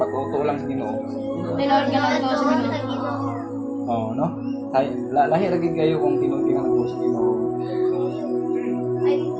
lang sa Ginoo? Tinood ka lang to sa Ginoo. Oh, no? Lahi ra gid kayo kung tinuod nga nagtuo sa Ginoo.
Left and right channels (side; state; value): both; identical; correlation 1.00